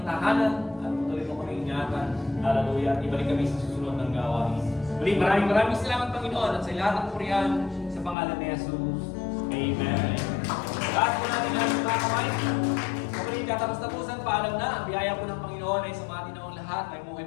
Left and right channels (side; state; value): right; drops out; at 8.2 s